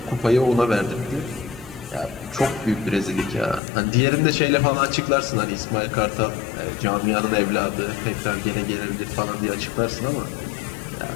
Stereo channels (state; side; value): drops out; right; at 3.6 s